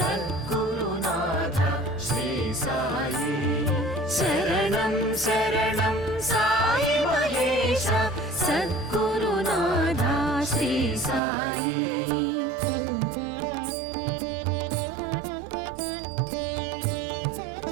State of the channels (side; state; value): left; drops out; at 11.2 s